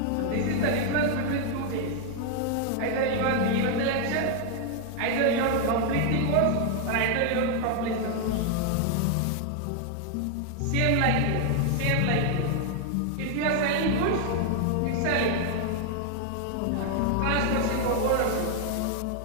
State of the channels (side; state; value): both; different; correlation 0.00